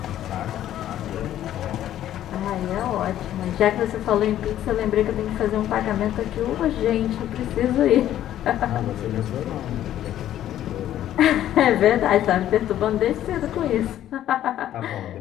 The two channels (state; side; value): quieter; right; 12.1 dB